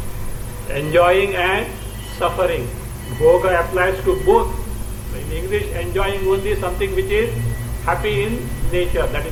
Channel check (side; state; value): both; identical; correlation 1.00